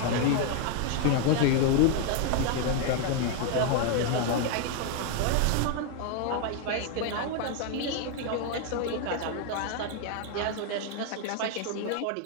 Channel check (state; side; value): different; both; correlation 0.00